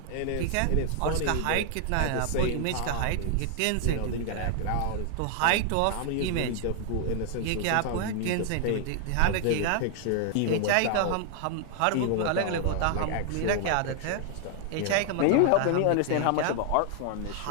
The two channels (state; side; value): different; both; correlation 0.00